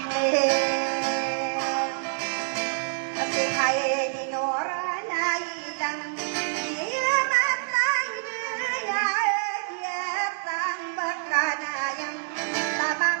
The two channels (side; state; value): left; silent; digital silence